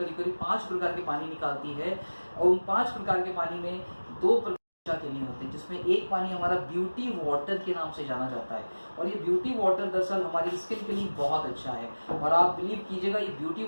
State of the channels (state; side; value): inverted; both; correlation -1.00